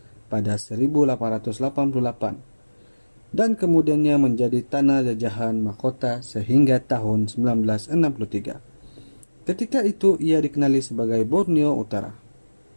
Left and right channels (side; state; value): both; inverted; correlation -1.00